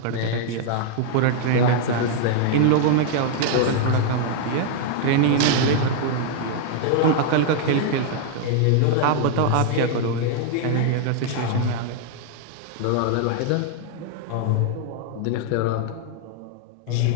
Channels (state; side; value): different; both; correlation 0.00